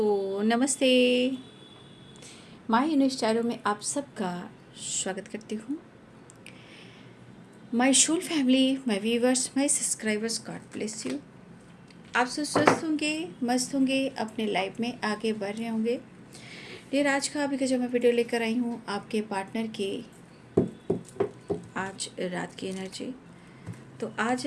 नमस्ते। My unique स्टाइलों में आप सबका स्वागत करती हूँ। My whole family, my viewers, my subscribers, God bless you. आप सब स्वस्थ होंगे, मस्त होंगे, अपने लाइफ में आगे बढ़ रहे होंगे। फिर आज का अभी का जो मैं वीडियो लेकर आई हूँ आपके पार्टनर की आज रात की एनर्जी। तो आज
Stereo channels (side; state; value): both; identical; correlation 1.00